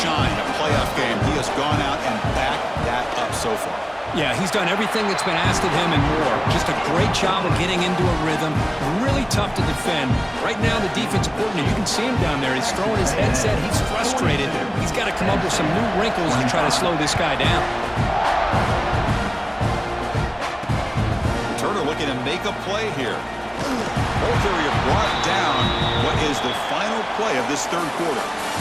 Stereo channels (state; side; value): identical; both; correlation 1.00